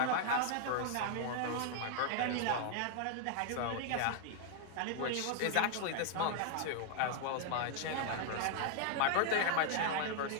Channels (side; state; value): both; different; correlation 0.00